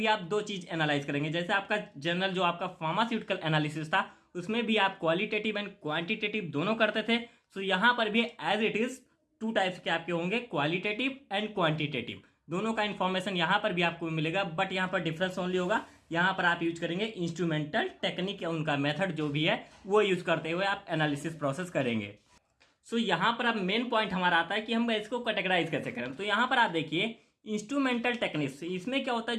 आप दो चीज़ एनालाइज करेंगे, जैसे आपका जनरल जो आपका फार्मास्यूटिकल एनालिसिस था उसमें भी आप क्वालिटेटिव एंड क्वांटिटेटिव दोनों करते थे। सो यहाँ पर भी as it is two types के आपके होंगे, क्वालिटेटिव एंड क्वांटिटेटिव, दोनों का इन्फॉर्मेशन यहाँ पर भी आपको मिलेगा। बट यहाँ पर डिफरेंस ओनली होगा, यहाँ पर आप यूज करेंगे इंस्ट्रूमेंटल टेक्निक या उनका मेथड जो भी है वो यूज करते हुए आप एनालिसिस प्रोसेस करेंगे। सो यहाँ पर अब मेन पॉइंट हमारा आता है कि हम इसको कैटेगराइज कैसे करें। तो यहाँ पर आप देखिए इंस्ट्रूमेंटल टेक्निक्स, इसमें क्या होता है,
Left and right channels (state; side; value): identical; both; correlation 1.00